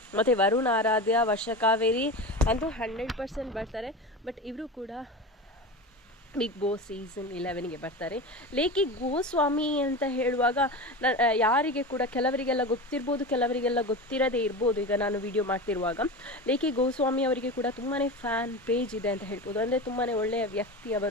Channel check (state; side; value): normal; both; correlation 0.27